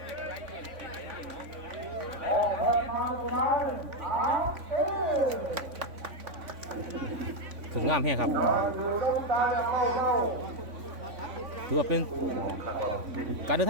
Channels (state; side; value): late; left; 3.5 ms